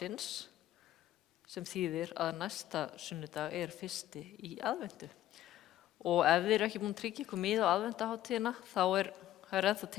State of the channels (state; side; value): quieter; right; 13.3 dB